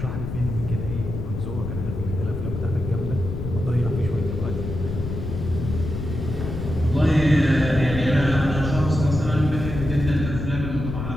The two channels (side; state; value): left; noise; rumble, 5 dB below the sound